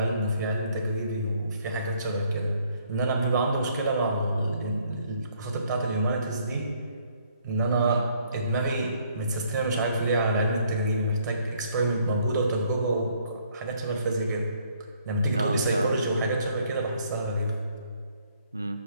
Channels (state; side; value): inverted; both; correlation -0.65